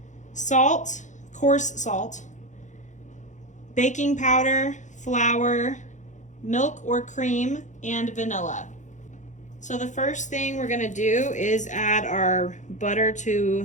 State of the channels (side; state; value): right; late; 0.35 ms